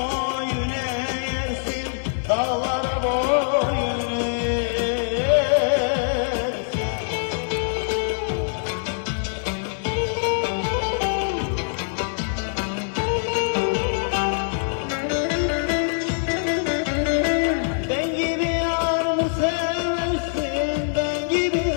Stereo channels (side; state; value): right; silent; 63 dB below the other